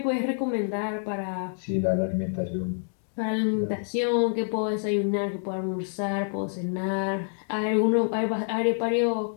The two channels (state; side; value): silent; right; digital silence